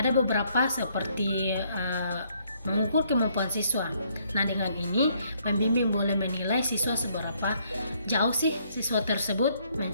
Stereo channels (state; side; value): inverted; both; correlation -0.68